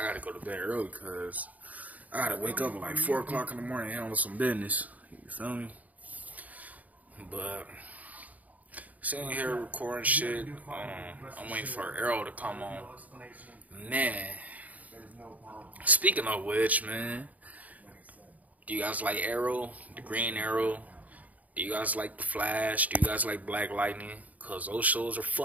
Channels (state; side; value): late; left; 0.074 ms